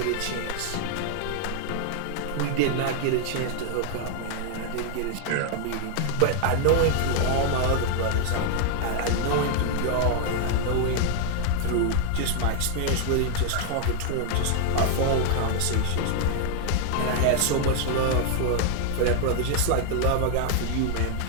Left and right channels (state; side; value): different; both; correlation 0.00